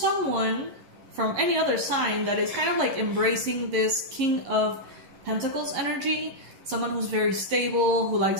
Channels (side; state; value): left; late; 11 ms